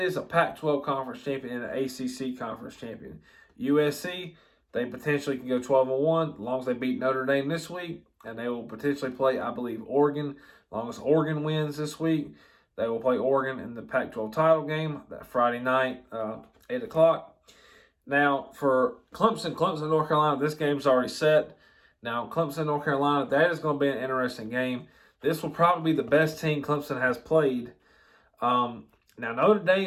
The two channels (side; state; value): both; identical; correlation 1.00